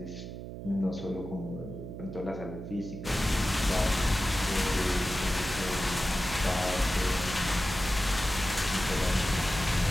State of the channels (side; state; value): right; noise; hum, 9 dB below the sound